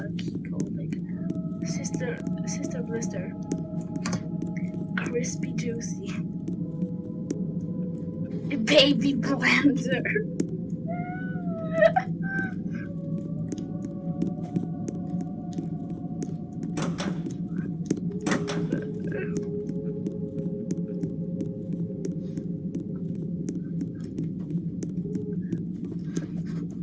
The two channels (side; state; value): both; identical; correlation 1.00